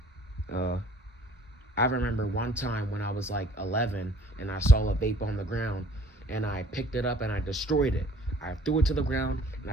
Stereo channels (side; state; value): both; normal; correlation 0.54